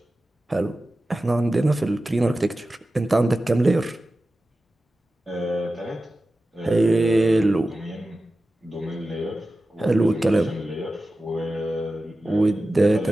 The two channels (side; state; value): both; normal; correlation 0.94